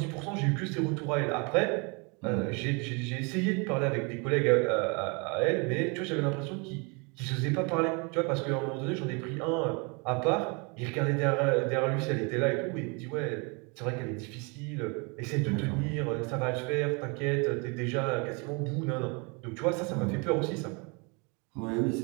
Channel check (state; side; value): quieter; left; 31.5 dB